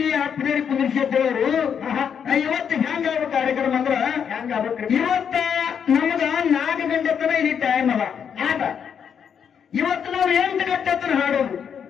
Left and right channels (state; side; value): quieter; right; 7.6 dB